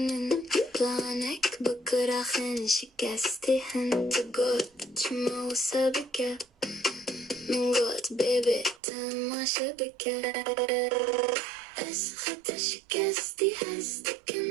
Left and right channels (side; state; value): left; drops out; at 8.8 s